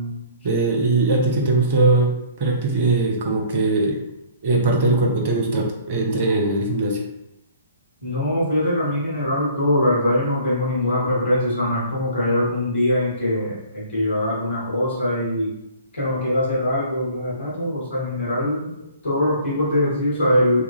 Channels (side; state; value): both; inverted; correlation -0.51